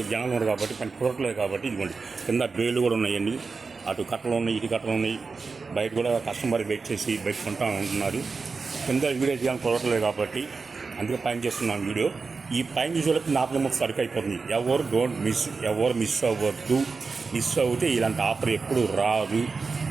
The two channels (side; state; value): left; quieter; 4.5 dB